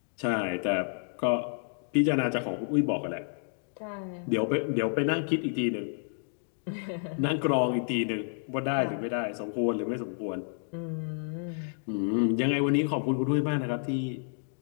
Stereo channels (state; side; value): silent; right; digital silence